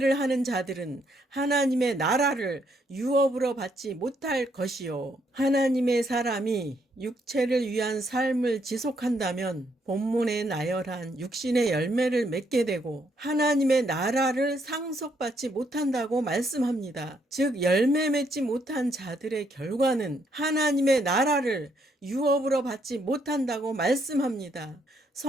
하는 자들은 하나님의 나라를 유업으로 받지 못할 것이요. 하나님의 사람이 육체를 위한 삶을 지속한다면 본문에 나열한 육신의 열매를 맺게 되고 하나님의 나라를 상속받지 못한다고 말씀합니다. 즉 열매 맺지 못한 자들의 결과는 하나님의 나라를 유업으로 받지 못한다고 말씀합니다.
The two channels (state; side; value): normal; both; correlation 0.73